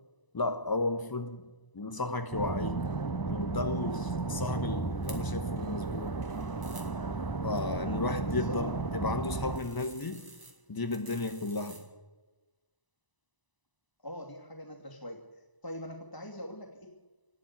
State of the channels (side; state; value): right; late; 1.0 ms